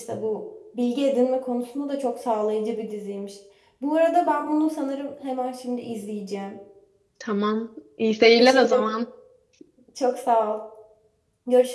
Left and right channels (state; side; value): identical; both; correlation 1.00